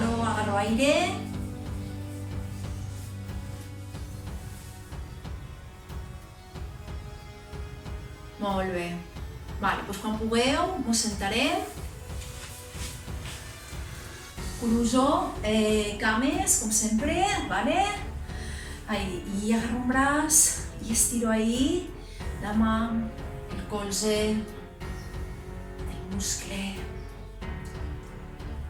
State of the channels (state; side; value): identical; both; correlation 1.00